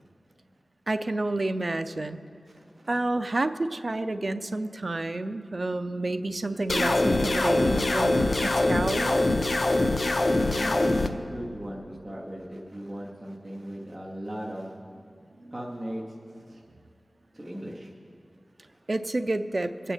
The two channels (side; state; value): both; normal; correlation 0.96